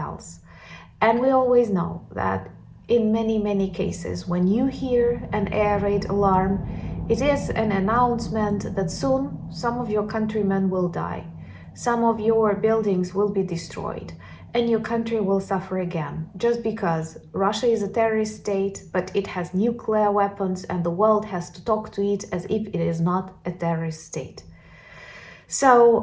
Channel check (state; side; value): identical; both; correlation 1.00